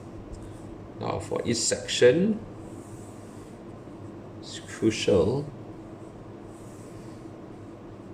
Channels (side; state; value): both; identical; correlation 1.00